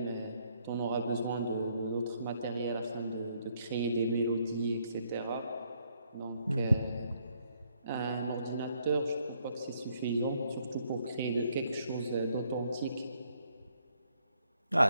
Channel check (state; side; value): inverted; both; correlation -0.71